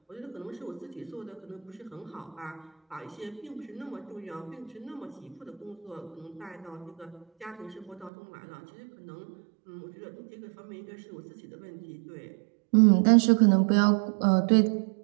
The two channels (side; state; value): left; drops out; at 8.1 s